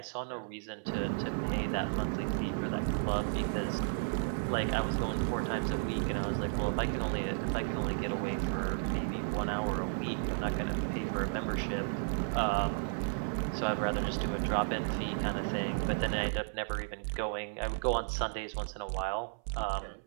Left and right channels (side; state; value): left; silent; 55 dB below the other